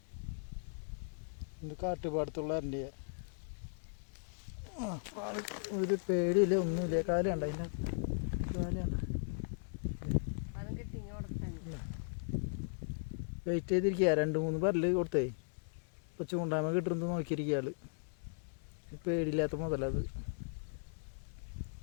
ഇത് കാട്ടുപാടത്തുള്ള എരണ്ടയാ. ഒരു പേടിയില്ല ഒന്നുമില്ല. കാല് കണ്ട അതിൻ്റെ കാല് കണ്ട. വെയിറ്റ് ചെയ്തിരിക്കുക. 2-3 പരല് കൊടുത്തേ. ഇപ്പോൾ ചൂണ്ടായ്മ കിട്ടുന്നത് നോക്കിയിരിക്കുക ആള്. പേടിയില്ലാത്ത മുതലത്.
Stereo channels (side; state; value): right; silent; digital silence